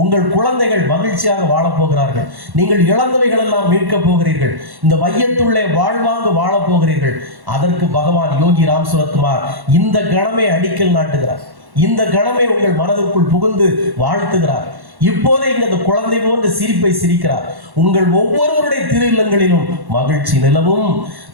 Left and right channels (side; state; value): left; late; 1.1 ms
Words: உங்கள் குழந்தைகள் மகிழ்ச்சியாக வாழப் போகிறார்கள். நீங்கள் இழந்தவைகள் எல்லாம் மீட்கப் போகிறீர்கள். இந்த வையத்துள்ளே வாழ்வாங்கு வாழப் போகிறீர்கள். அதற்கு பகவான் யோகி ராம் சுரத்குமார் இந்த கணமே அடிக்கல் நாட்டுகிறார். இந்த கணமே உங்கள் மனதிற்குள் புகுந்து வாழ்த்துகிறார். இப்போதே இங்க அந்த குழந்தை போன்ற சிரிப்பை சிரிக்கிறார். உங்கள் ஒவ்வொருவருடைய திரு இல்லங்களிலும் மகிழ்ச்சி நிலவும்.